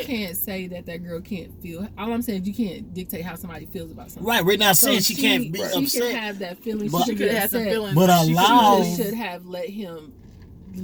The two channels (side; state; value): both; identical; correlation 1.00